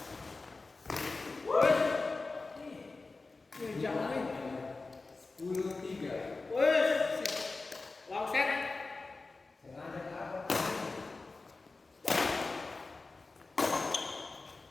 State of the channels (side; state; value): right; quieter; 3.7 dB